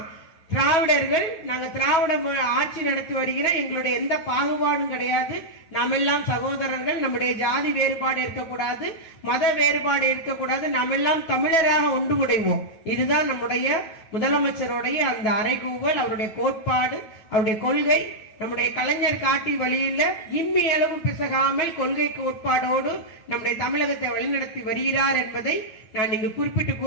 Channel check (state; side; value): late; right; 9.2 ms